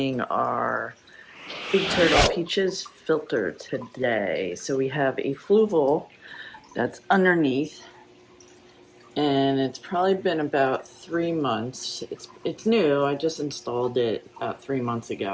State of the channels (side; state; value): both; identical; correlation 1.00